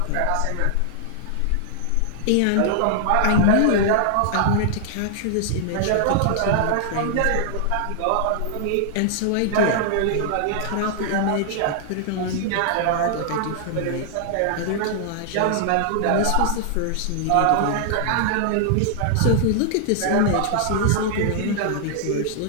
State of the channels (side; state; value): both; different; correlation -0.01